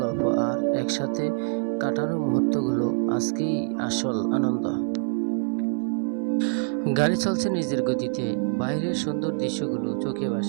গল্প আর একসাথে কাটানো মুহূর্তগুলো আজকেই আসল আনন্দ। গাড়ি চলছে নিজের গতিতে, বাইরের সুন্দর দৃশ্যগুলো চোখে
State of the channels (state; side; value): silent; left; digital silence